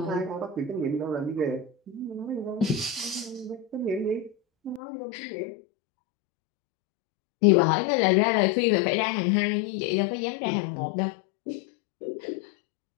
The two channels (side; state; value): right; drops out; at 4.8 s